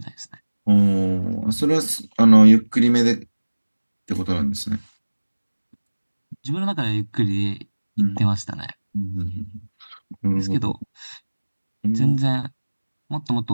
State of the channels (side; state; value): both; inverted; correlation -1.00